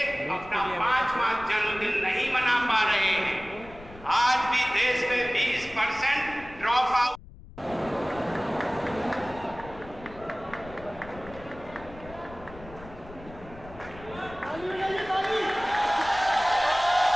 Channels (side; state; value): left; noise; rumble, 18 dB below the sound